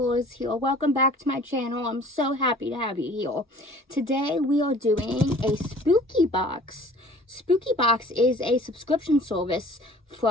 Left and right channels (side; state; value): both; normal; correlation 0.49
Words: here. Welcome back to my channel. I'm so happy to have you here. Today we are doing a spooky box. Spooky Box is a subscription service